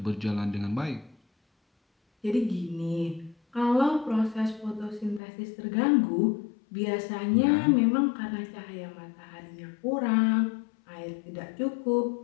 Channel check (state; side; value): drops out; right; at 5.2 s